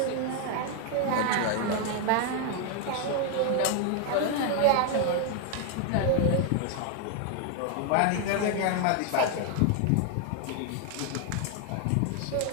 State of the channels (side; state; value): both; different; correlation 0.00